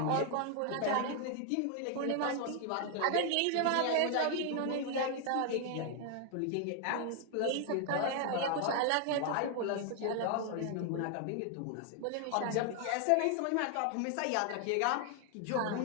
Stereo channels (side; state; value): both; different; correlation 0.00